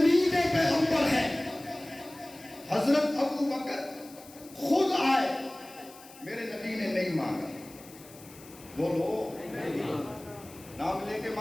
پیغمبر ہیں. حضرت ابو بکر خود آئے، میرے نبی نے نہیں مانگا. بولو نام لے کے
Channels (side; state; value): left; noise; hiss, 20 dB below the sound